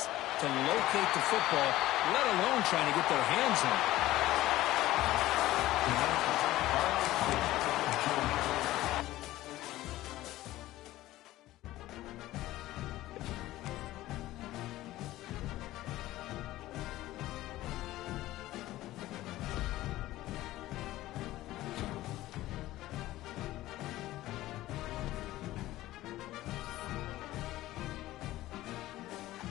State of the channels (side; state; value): right; quieter; 16.0 dB